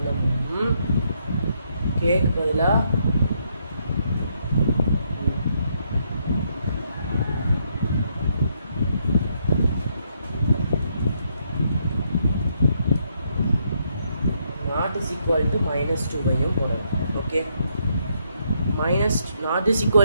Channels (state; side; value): inverted; both; correlation -0.75